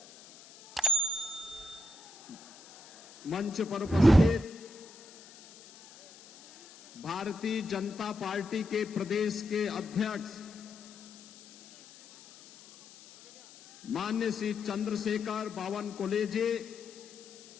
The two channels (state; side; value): noise; left; hiss, 21 dB below the sound